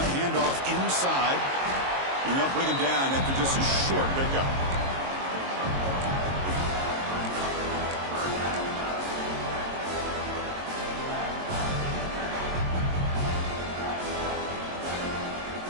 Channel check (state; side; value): late; left; 22 ms